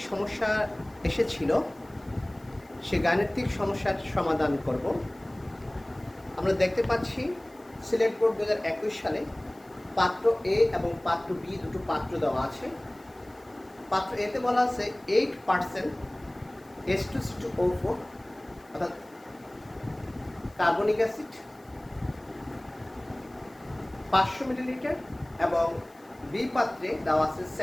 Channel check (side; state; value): left; noise; hiss, 30 dB below the sound